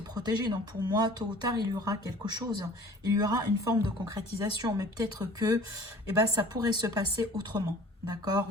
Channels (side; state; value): both; normal; correlation 0.47